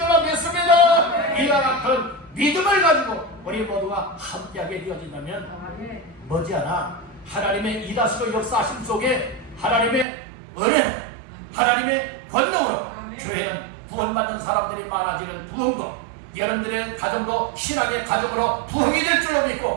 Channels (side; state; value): left; drops out; at 10.1 s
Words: 믿습니다. 이와 같은 믿음을 가지고 우리 모두가 함께하게 되어진다면 머지않아 하나님의 이다시고 역사하심 속에 하나님의 은혜, 하나님의 권능으로 교회는 구원받는 사람들이 많아지는 부흥도, 여러분들의 가정도 신앙의 가정으로 부흥이 될 줄로